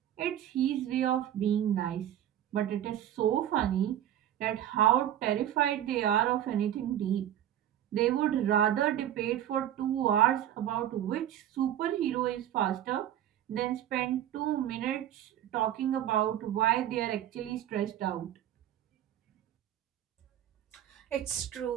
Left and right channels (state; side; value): quieter; left; 11.4 dB